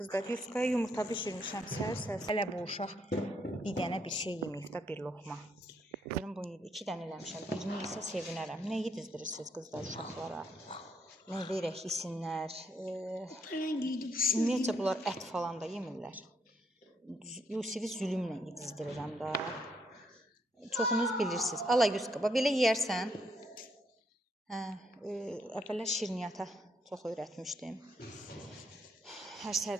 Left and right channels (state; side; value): normal; both; correlation 0.74